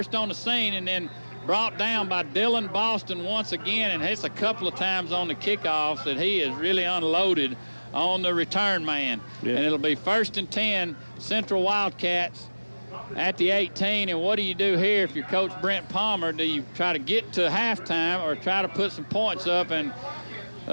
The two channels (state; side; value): inverted; both; correlation -1.00